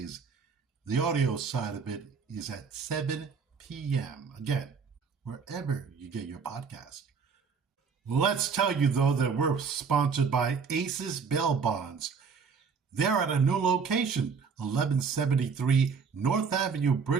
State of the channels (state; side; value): quieter; left; 5.7 dB